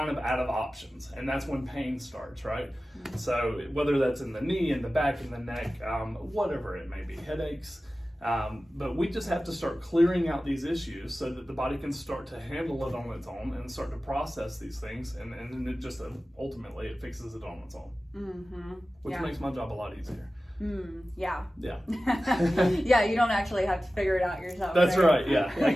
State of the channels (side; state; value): both; normal; correlation 0.95